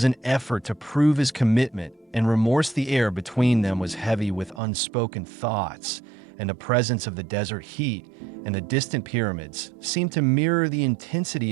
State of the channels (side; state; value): left; drops out; at 4.6 s